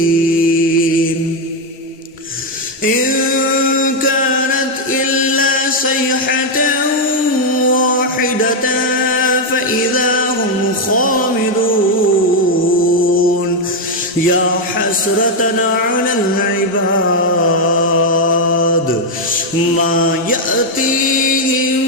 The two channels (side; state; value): both; normal; correlation 0.02